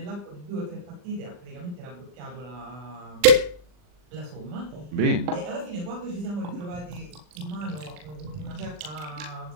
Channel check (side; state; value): left; late; 40 ms